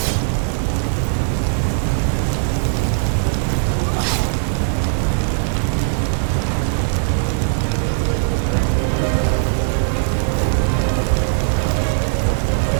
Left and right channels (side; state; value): left; silent; digital silence